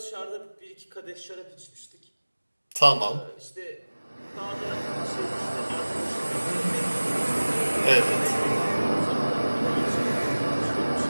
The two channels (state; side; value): inverted; both; correlation -1.00